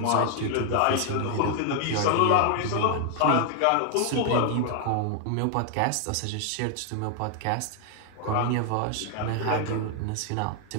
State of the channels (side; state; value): both; different; correlation 0.00